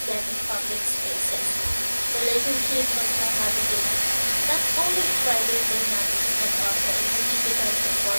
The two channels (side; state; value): both; inverted; correlation -1.00